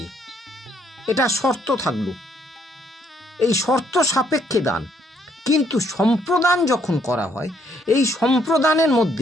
এটা শর্ত থাকলো, এই শর্ত সাপেক্ষে দান। কিন্তু সম্প্রদান যখন করা হয়, এই সম্প্রদানের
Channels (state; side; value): normal; both; correlation 0.70